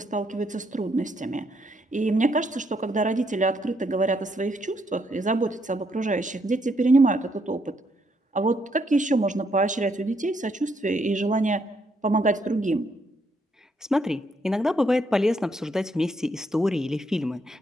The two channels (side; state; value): both; normal; correlation 0.74